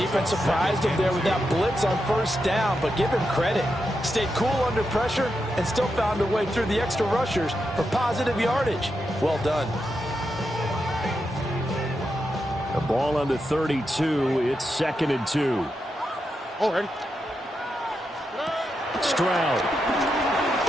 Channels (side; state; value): both; normal; correlation 0.86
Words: surprised him there with that blitz on first down, but give him credit. Stayed cool under pressure and still found a way through the extra rushers for positive yardage. Well done. The ball on the 32. It's second and 2. Oh, ready. Stroud.